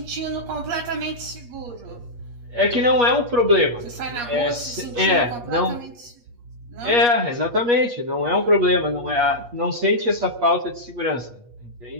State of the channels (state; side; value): late; left; 8.4 ms